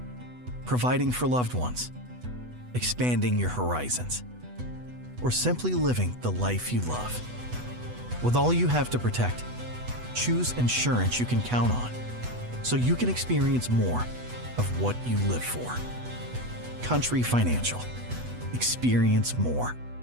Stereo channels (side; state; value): left; late; 8.1 ms